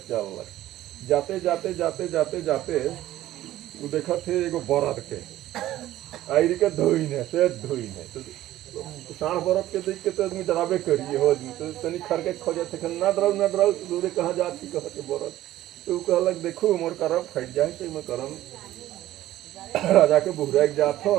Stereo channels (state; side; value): quieter; left; 14.3 dB